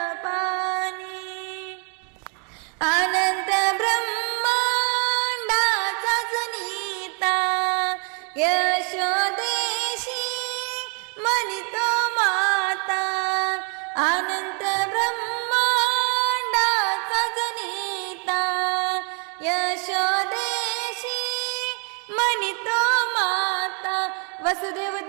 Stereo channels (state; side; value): quieter; left; 38.5 dB